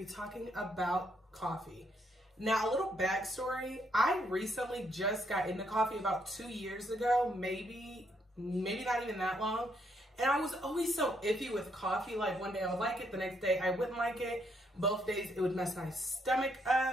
talking about coffee. Now, a little backstory. I recently just got into coffee about 2 years ago, maybe not even that long. And I was always so iffy with coffee. Like, one day I would like it, the next day I wouldn't like it. Both days it would mess my stomach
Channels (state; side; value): normal; both; correlation 0.74